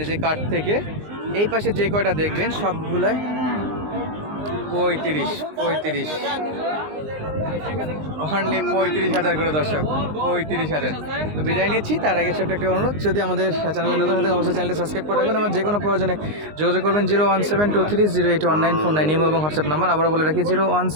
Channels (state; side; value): late; left; 19 ms